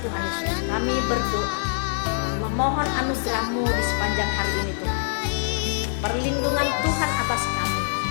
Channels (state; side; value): silent; right; 62 dB below the other